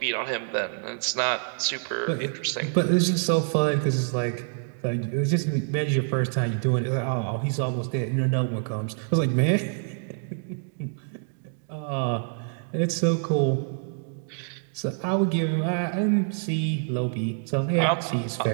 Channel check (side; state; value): left; silent; digital silence